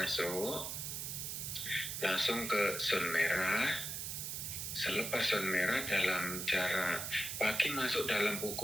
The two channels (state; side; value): noise; right; hiss, 4 dB below the sound